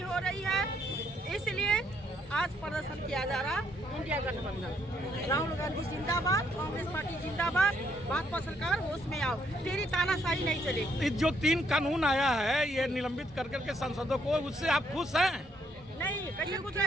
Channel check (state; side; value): normal; both; correlation 0.71